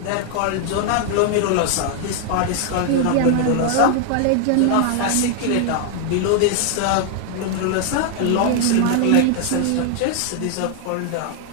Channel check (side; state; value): both; different; correlation 0.00